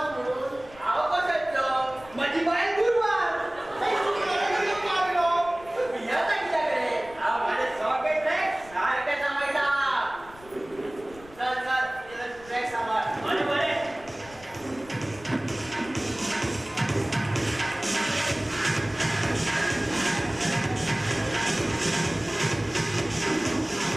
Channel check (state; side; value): noise; left; rumble, 22 dB below the sound